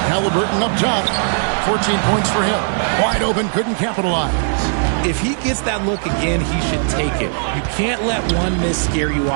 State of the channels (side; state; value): left; silent; 67 dB below the other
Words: Halliburton up top. 14 points for him. Wide open, couldn't capitalize. If he gets that look again, he should take it. You can't let one miss scare you